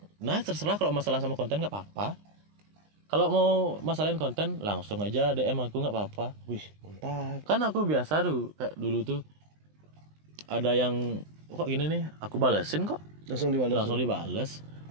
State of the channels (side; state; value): left; late; 20 ms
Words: terserah, kalau masalah sama konten nggak apa-apa. Kalau mau masalahin konten langsung aja DM aku nggak apa-apa. Wih, mantap. Kan aku biasa tuh kayak dulu tuh ada yang kok gini nih, aku balesin kok. Langsung dibales.